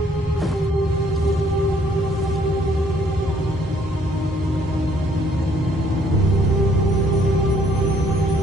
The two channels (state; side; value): normal; both; correlation 0.64